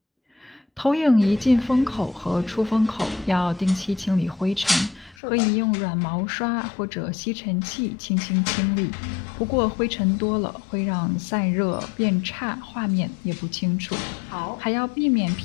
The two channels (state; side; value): drops out; right; at 5.2 s